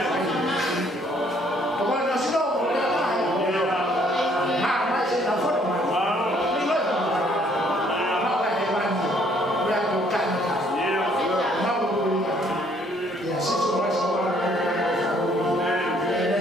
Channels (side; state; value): both; normal; correlation 0.64